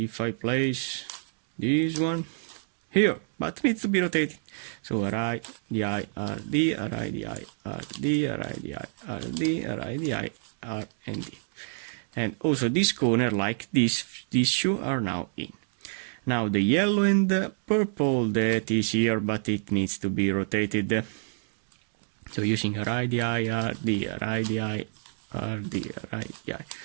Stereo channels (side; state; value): left; silent; digital silence